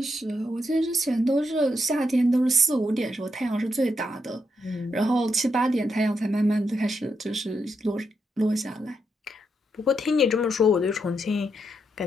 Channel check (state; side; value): normal; both; correlation 0.81